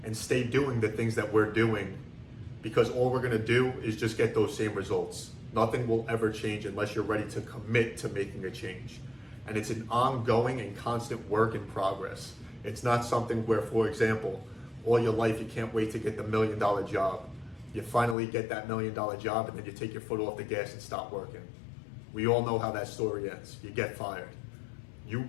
and stay doing the things that we're doing, because all we're going to do is just get those same results. Nothing will ever change unless you're ready to commit to making a change. And it's an ongoing and constant work in progress. It's not something where, for example, all your life you can't wait to get the $1 million job. You finally get that $1 million job and then you take your foot off the gas and stop working. We all know how that story ends. You get fired. You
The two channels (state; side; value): drops out; right; at 18.2 s